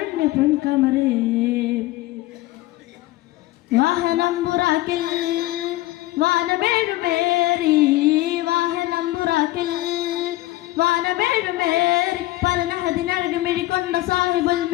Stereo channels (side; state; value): right; quieter; 17.5 dB